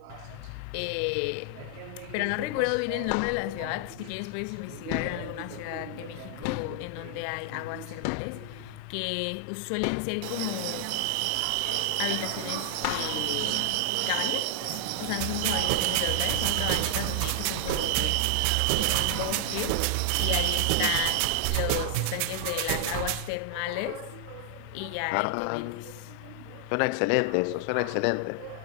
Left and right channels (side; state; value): both; different; correlation 0.00